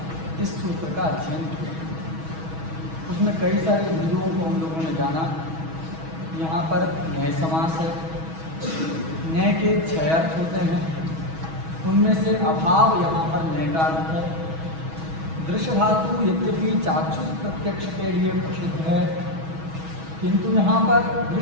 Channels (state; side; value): late; left; 6.2 ms